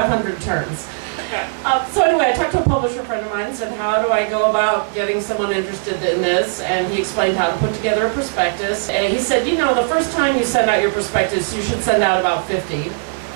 turns. So anyway, I talked to a publisher friend of mine and said, how do I go about getting someone interested in this? And he explained how to put together a prospectus. And he said, you know, the first time you send out your prospectus, you should send out about 50.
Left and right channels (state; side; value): silent; left; digital silence